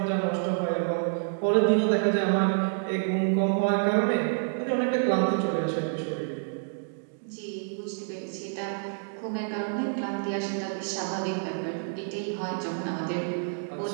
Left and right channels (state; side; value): silent; left; digital silence